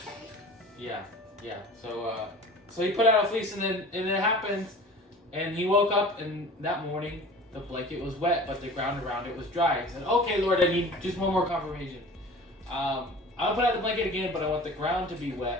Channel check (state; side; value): normal; both; correlation 0.41